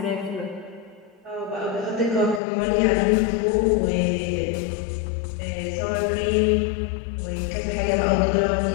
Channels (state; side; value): drops out; right; at 2.4 s